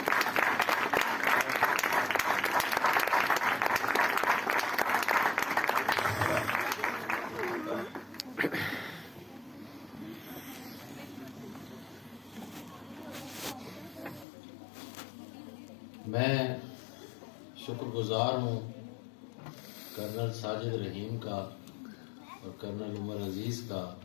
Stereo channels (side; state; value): right; drops out; at 14.2 s